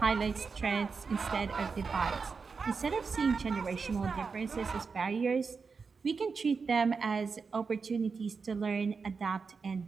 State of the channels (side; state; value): left; quieter; 5.0 dB